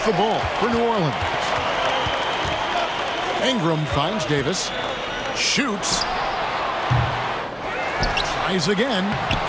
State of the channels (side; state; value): both; identical; correlation 1.00